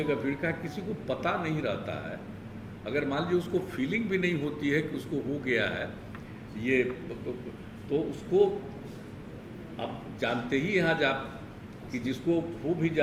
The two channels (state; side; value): identical; both; correlation 1.00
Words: भीड़ का किसी को पता नहीं रहता है, अगर मान लीजिए उसको फीलिंग भी नहीं होती है कि उसको हो गया है ये, तो उसको आप जानते ही यहाँ जा कि जिसको हो भी